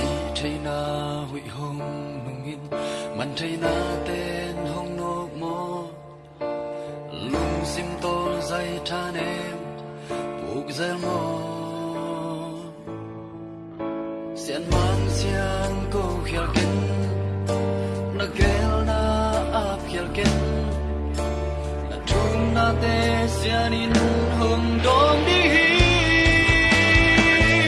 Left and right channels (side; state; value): both; identical; correlation 1.00